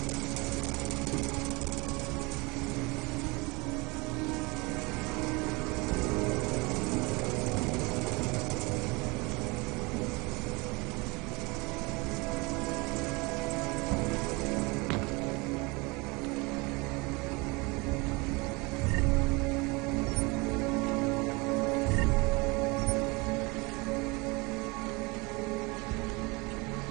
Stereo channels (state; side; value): quieter; left; 26.3 dB